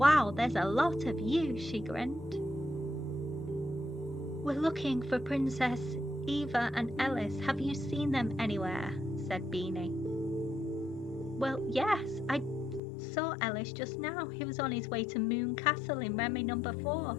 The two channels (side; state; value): right; drops out; at 12.8 s